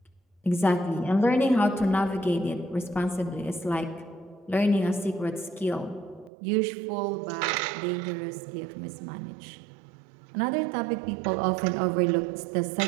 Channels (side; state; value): left; drops out; at 6.3 s